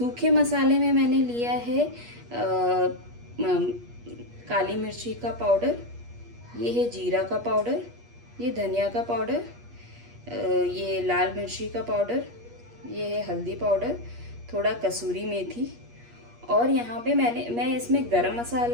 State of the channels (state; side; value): late; left; 8.4 ms